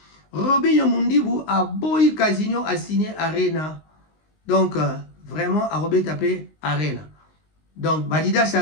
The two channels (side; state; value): right; late; 19 ms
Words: Robinho Mundibu a boyi Casino a signé Arena. Donc vraiment a Robert tapé Arena. Donc Badidas